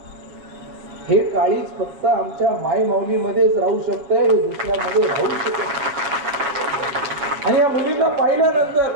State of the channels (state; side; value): late; left; 7.0 ms